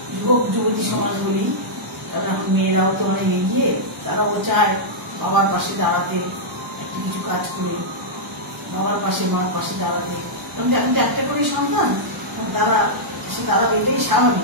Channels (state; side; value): normal; both; correlation -0.09